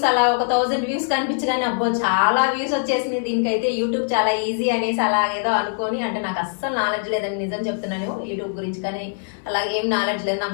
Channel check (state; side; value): silent; right; digital silence